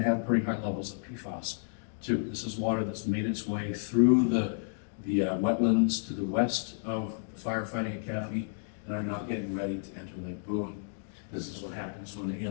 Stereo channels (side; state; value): right; silent; digital silence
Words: pretty high levels of PFAS too. This is water that's made its way through the wetlands to the west of the Firefighting Academy and are now getting ready to enter Lake Boon. This is what happens when they